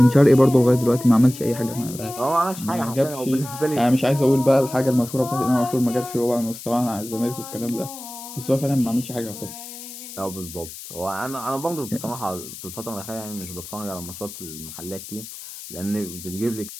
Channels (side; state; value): left; noise; hiss, 13 dB below the sound